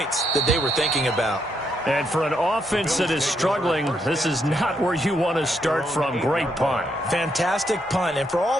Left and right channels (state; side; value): normal; both; correlation 0.77